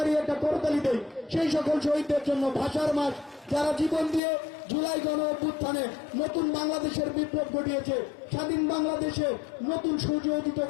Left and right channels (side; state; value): right; drops out; at 4.2 s